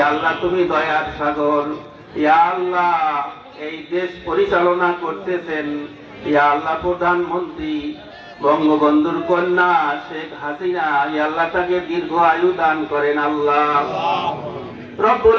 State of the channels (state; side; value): identical; both; correlation 1.00